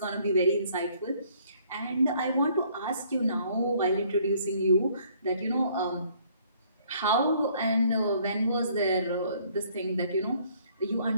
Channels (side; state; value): both; inverted; correlation -0.62